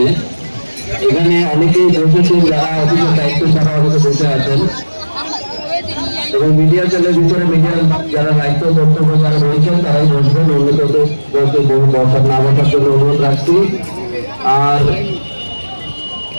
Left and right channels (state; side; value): inverted; both; correlation -1.00